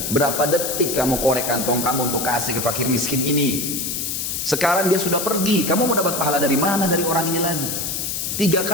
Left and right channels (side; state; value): left; noise; hiss, 3 dB below the sound